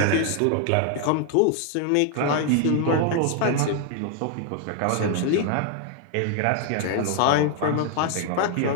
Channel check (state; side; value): different; both; correlation 0.00